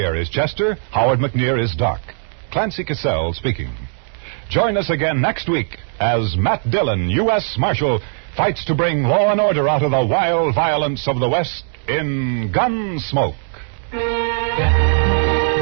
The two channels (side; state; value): left; silent; digital silence